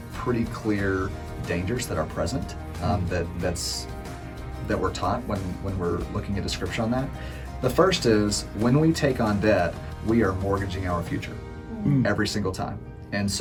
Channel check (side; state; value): both; identical; correlation 1.00